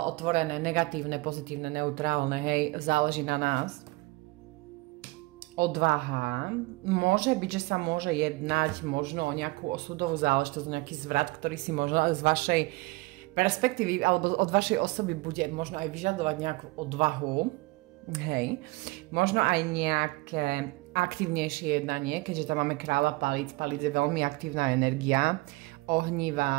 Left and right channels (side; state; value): left; quieter; 23.0 dB